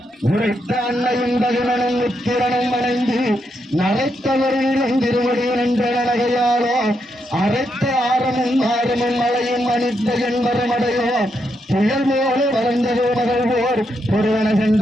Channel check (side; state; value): both; normal; correlation 0.81